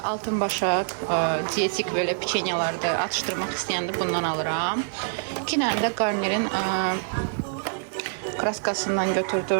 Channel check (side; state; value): left; silent; digital silence